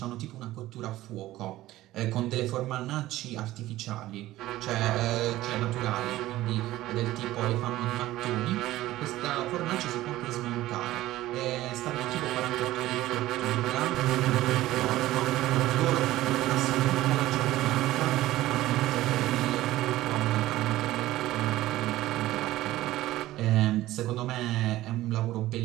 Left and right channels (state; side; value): quieter; left; 15.9 dB